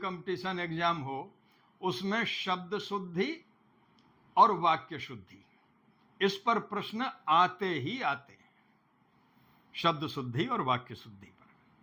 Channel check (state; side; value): identical; both; correlation 1.00